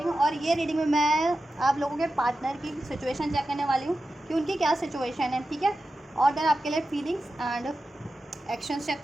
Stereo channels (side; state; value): both; normal; correlation 0.92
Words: और ये रीडिंग में मैं आप लोगों के पार्टनर की सिचुएशन चेक करने वाली हूँ कि उनकी क्या सिचुएशन है, ठीक है। और देन आपके लिए फीलिंग्स एंड एक्शंस चेक